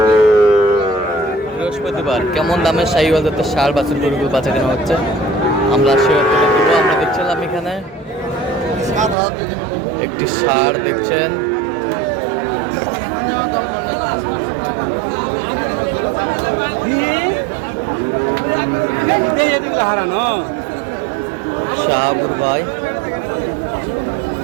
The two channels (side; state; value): left; drops out; at 9.2 s